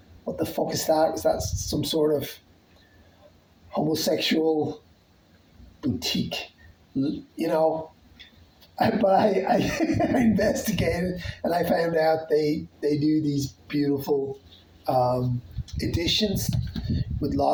what the fuck is that? Was that some sort of homosexual boutique? I investigated, and I found out they do these beautiful editions with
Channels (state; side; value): identical; both; correlation 1.00